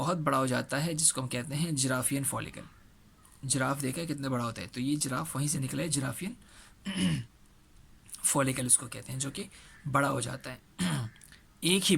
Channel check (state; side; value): identical; both; correlation 1.00